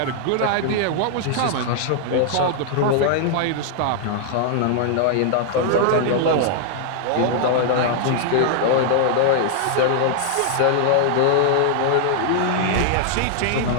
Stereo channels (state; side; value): different; both; correlation 0.00